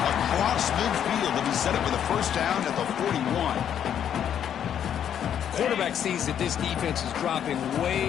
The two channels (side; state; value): right; quieter; 9.3 dB